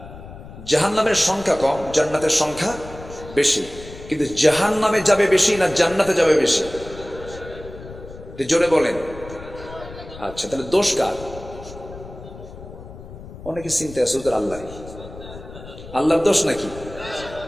জাহান্নামের সংখ্যা কম, জান্নাতের সংখ্যা বেশি। কিন্তু জাহান্নামে যাবে বেশি না জান্নাতে যাবে বেশি? জোরে বলেন। আচ্ছা, তাহলে দোষ কার? অনেকে চিন্তা আছে ওদের আল্লাহরই। আল্লাহর দোষ নাকি?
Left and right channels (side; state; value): left; noise; rumble, 15 dB below the sound